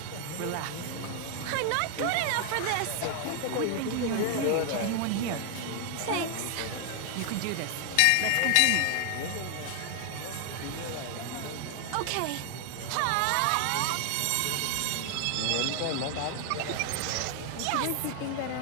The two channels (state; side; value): different; both; correlation 0.00